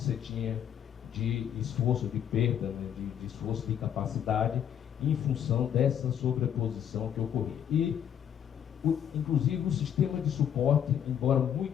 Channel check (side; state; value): right; quieter; 9.3 dB